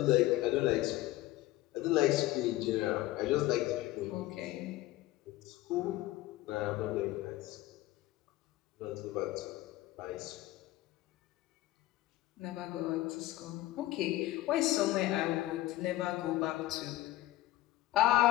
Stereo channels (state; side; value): quieter; right; 16.5 dB